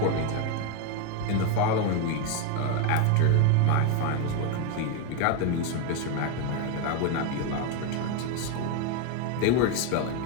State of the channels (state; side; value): different; both; correlation 0.02